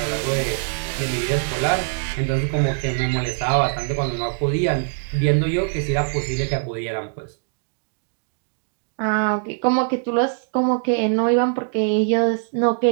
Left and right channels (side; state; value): left; silent; digital silence